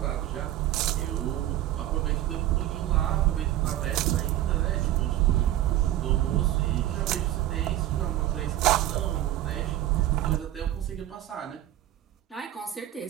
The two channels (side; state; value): left; quieter; 13.6 dB